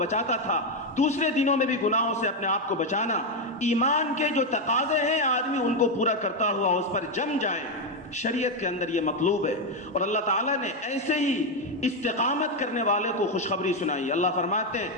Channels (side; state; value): both; normal; correlation 0.06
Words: تھا دوسرے دنوں میں بھی گناہوں سے اپنے آپ کو بچانا، ایمان کے جو تقاضے ہیں آدمی ان کو پورا کرتا ہوا اس پر جم جائے، شریعت کے اندر یہ مطلوب ہے۔ اور اللہ تعالیٰ نے ایسے ہی استقامت کرنے والے کو خوشخبری سنائی۔ اللہ فرماتے